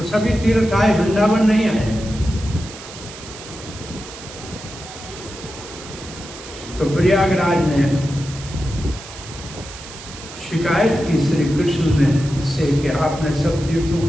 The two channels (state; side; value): noise; right; hiss, 14 dB below the sound